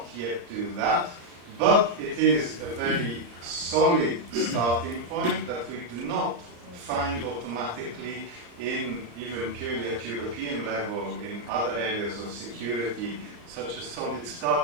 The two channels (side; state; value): left; late; 34 ms